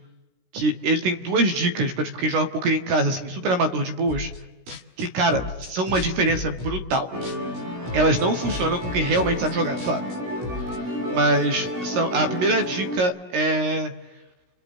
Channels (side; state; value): left; late; 16 ms